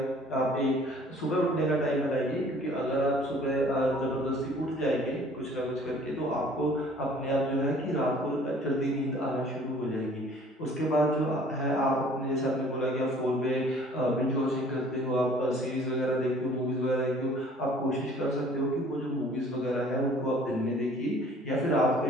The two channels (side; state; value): both; normal; correlation 0.53